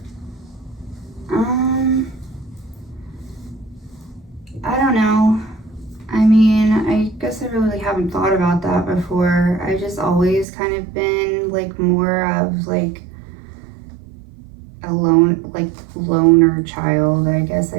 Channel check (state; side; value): drops out; left; at 10.5 s